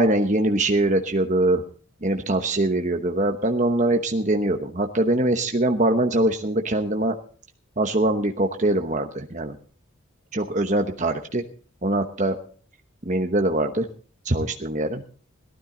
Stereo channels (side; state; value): both; normal; correlation 0.41